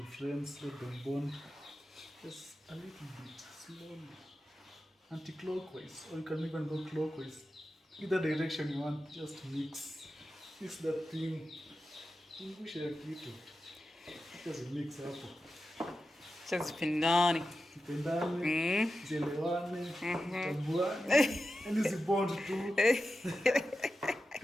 friends, let them bond. Just a little bit, slowly. Anti-clockwise, or you can even go clockwise. Either direction you want, just mix. Mix that thing. Push a little. Just mix up. Tupendane, zielewane, zitambuane, yani zibond tu.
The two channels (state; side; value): normal; both; correlation 0.92